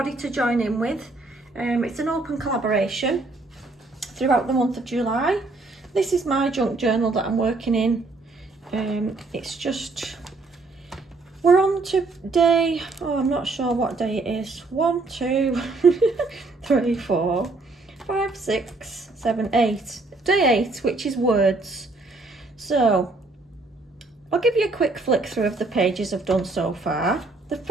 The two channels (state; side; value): quieter; left; 3.4 dB